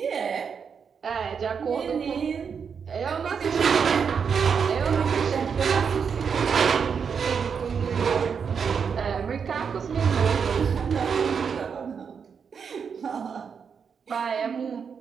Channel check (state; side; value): quieter; left; 6.5 dB